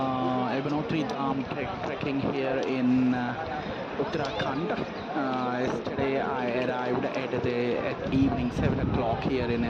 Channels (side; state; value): both; identical; correlation 1.00